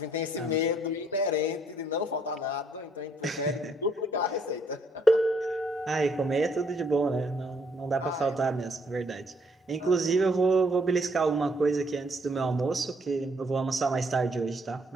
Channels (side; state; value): both; normal; correlation 0.68